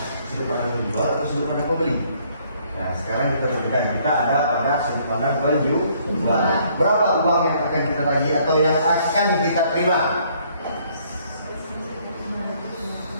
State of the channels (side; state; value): both; inverted; correlation -0.64